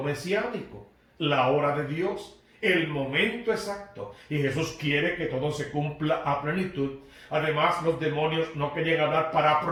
mesiánico, la hora de Dios, el momento exacto. Y Jesús quiere que todo se cumpla a plenitud. Además, los demonios no querían hablar para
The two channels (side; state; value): both; identical; correlation 1.00